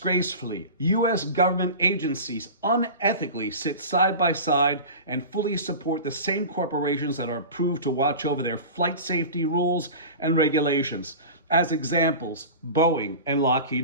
U.S. government agencies unethically sit side by side and fully support the same corporations that are approved to watch over their flight safety rules and regulations. As examples, Boeing and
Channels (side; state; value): both; inverted; correlation -0.32